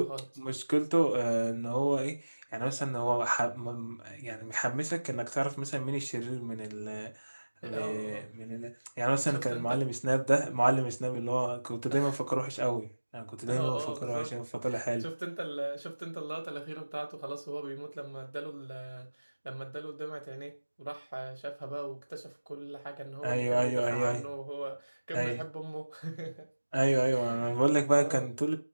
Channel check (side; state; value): both; inverted; correlation -1.00